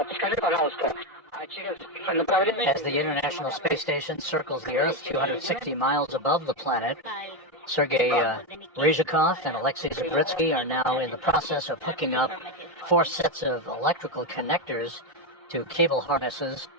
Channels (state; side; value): normal; both; correlation 0.09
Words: Подскажи, пожалуйста, через направление... As the International Space Station circles the Earth 260 miles above the planet, Sergei Ryzhikov and Alexei Zabritsky are now in the process of hooking up 4 sets of electrical connectors to cable harnesses